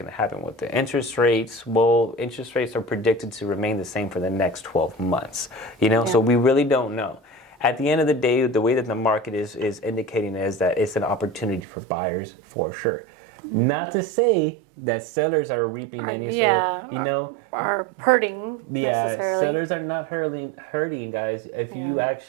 to happen with the interest rates. Well, interest rates are predicted to remain the same for the next 12 months. So we really don't know. At the end of the day, the way that the market is indicating is that it's an opportunity for buyers for sure. Not to say that sellers are reaping any sort of, are hurting. Yeah, sellers are not hurting, guys. If you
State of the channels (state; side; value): drops out; left; at 11.7 s